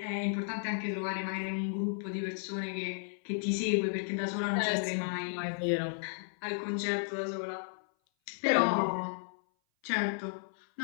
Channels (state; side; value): silent; right; 55 dB below the other